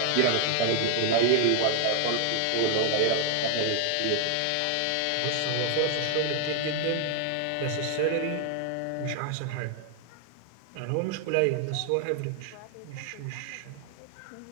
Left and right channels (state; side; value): different; both; correlation 0.00